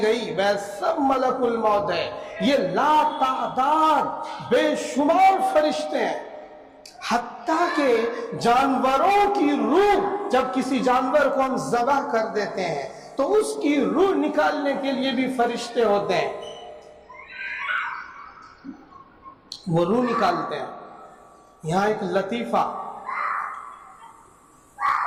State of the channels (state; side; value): identical; both; correlation 1.00